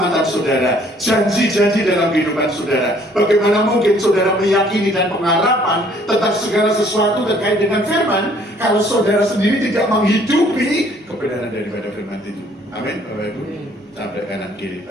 saudara, janji-janji dalam kehidupan saudara. Bagaimana mungkin saudara meyakini dan pengharapan tentang segala sesuatu terkait dengan firman, kalau saudara sendiri tidak menghidupi kebenaran daripada firman itu. Amin, Bapak Ibu. Sampai kanan kiri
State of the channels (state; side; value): normal; both; correlation 0.60